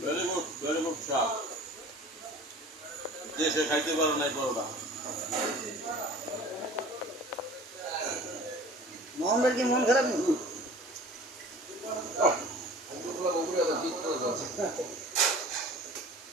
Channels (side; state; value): both; normal; correlation 0.44